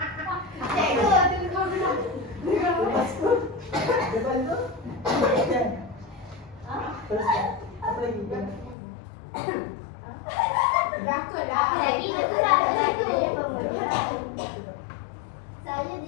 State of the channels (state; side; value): drops out; right; at 8.8 s